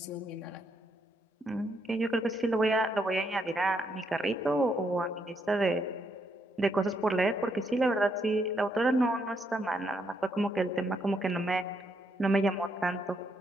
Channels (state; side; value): normal; both; correlation 0.76